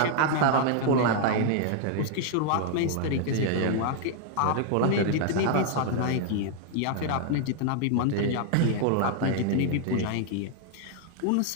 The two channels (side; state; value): both; different; correlation 0.00